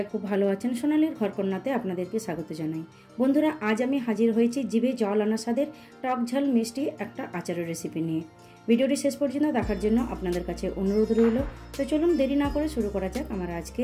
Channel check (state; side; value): identical; both; correlation 1.00